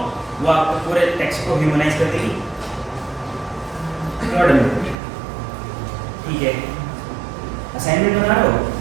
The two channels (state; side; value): drops out; left; at 5.0 s